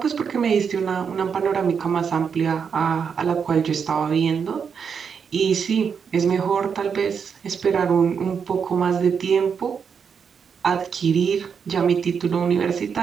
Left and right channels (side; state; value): left; quieter; 6.6 dB